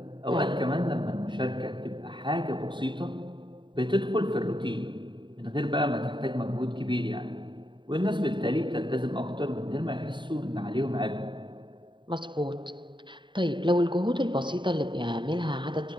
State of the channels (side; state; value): left; late; 0.23 ms